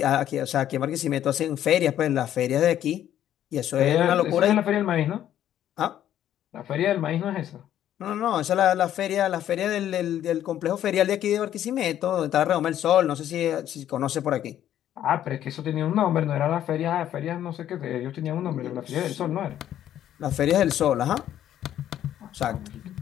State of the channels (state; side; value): quieter; right; 11.3 dB